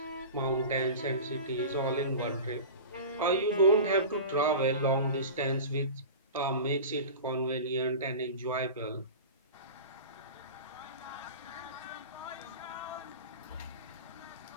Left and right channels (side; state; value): both; inverted; correlation -0.32